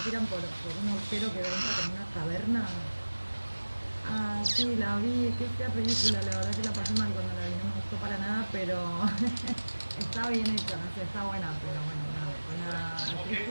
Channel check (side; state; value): both; inverted; correlation -1.00